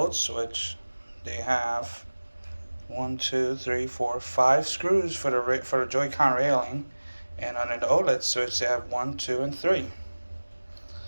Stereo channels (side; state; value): both; inverted; correlation -1.00